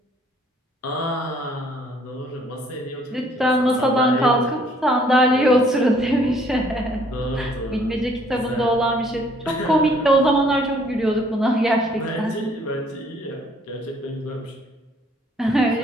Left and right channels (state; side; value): normal; both; correlation 0.62